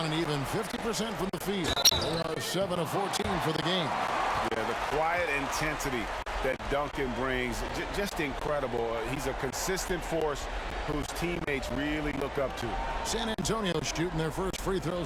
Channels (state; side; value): identical; both; correlation 1.00